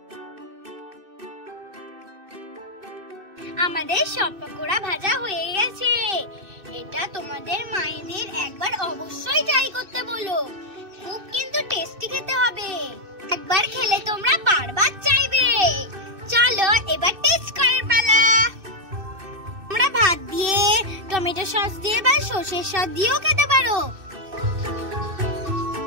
আমাদের সব পকোড়া ভাজা হয়ে গেছে। এটা তোমাদের মায়েদের একবার অবশ্যই ট্রাই করতে বলো, খুব কিন্তু টেস্টি খেতে হবে। একবার খেলে তোমরা বারবার চাইবে। চলো এবার টেস্ট করার পালা। তোমরা ভাত দিয়ে, টমেটো সস দিয়ে বা সরষের সস দিয়েও খেতে পারো।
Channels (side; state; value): left; late; 2.6 ms